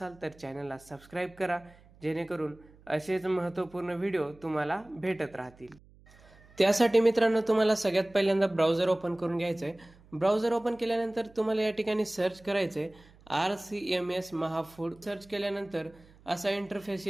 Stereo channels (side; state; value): right; noise; hum, 26 dB below the sound